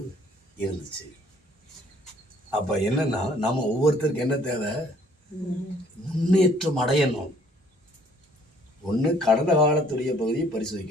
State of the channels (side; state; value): both; normal; correlation 0.60